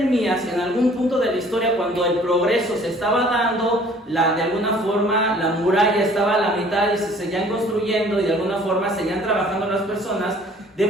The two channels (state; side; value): normal; both; correlation 0.54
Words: en algún punto de la historia, cuando el progreso se estaba dando, de alguna forma la muralla estaba a la mitad y se seguían construyendo y de alguna forma seguían trabajando las personas, de